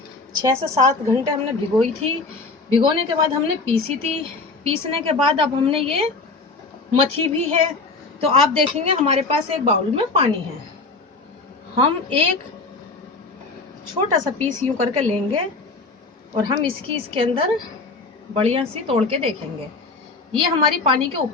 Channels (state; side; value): quieter; right; 3.7 dB